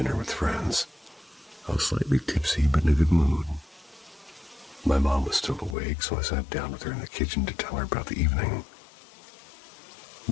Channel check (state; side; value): drops out; right; at 5.8 s